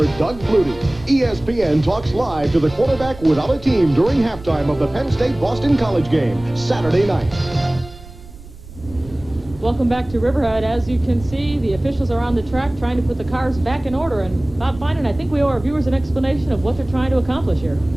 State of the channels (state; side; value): noise; right; rumble, 18 dB below the sound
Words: Doug Flutie? ESPN talks live to the quarterback without a team during halftime of the Penn State-Boston College game, Saturday night. Welcome back to Riverhead. As you can see, the officials are on the track trying to put the cars back in order. And Bob Finan, I think we owe our viewers an explanation of what they're trying to accomplish here.